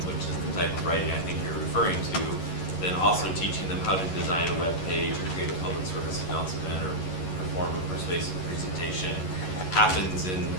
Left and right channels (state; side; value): late; right; 11 ms